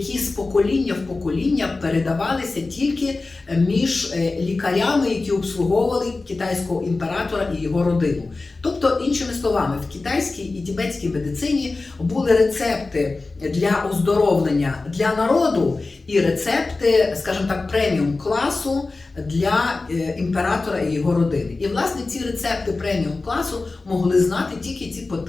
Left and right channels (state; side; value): quieter; right; 3.5 dB